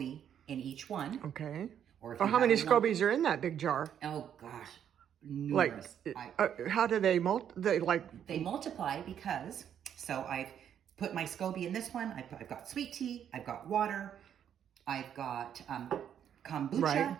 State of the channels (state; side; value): quieter; left; 9.2 dB